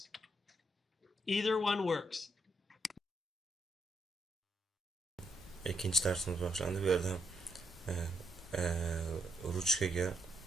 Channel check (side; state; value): both; normal; correlation 0.77